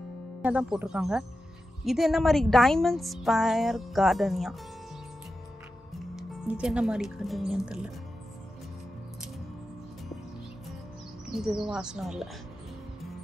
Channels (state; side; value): normal; both; correlation 0.91